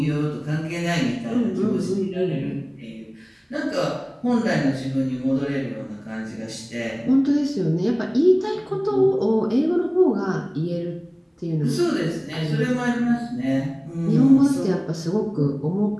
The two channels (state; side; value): identical; both; correlation 1.00